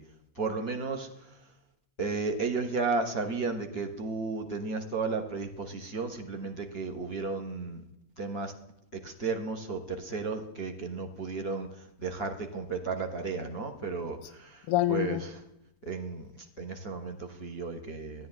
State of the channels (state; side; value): late; right; 6.4 ms